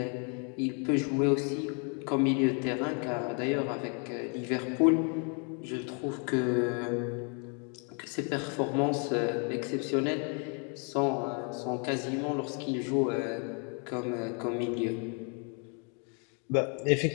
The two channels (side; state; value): right; quieter; 38.0 dB